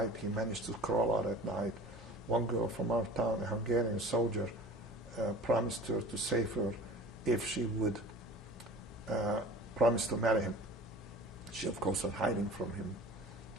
He managed to crawl out at night. One girl from our town, a Hungarian soldier, promised her to save her if she would promise to marry him. She, of course, was hiding from him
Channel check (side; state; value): both; normal; correlation 0.41